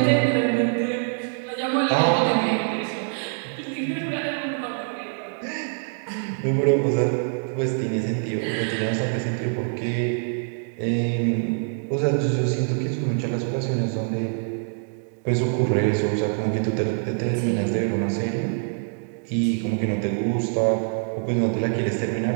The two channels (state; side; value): silent; left; digital silence